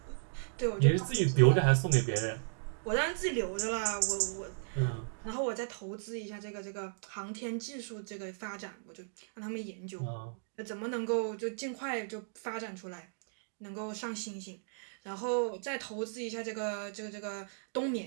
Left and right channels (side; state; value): left; silent; digital silence